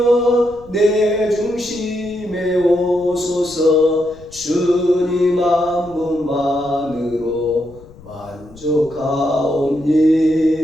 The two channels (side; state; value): left; noise; rumble, 22 dB below the sound